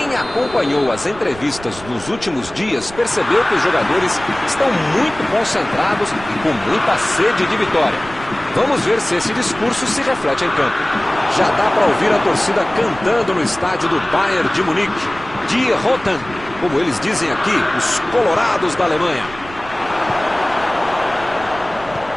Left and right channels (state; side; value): noise; right; rumble, 17 dB below the sound